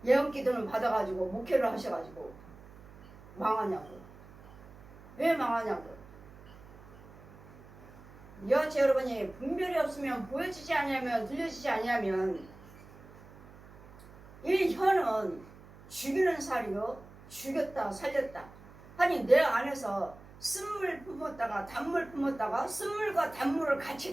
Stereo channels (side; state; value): right; noise; hum, 20 dB below the sound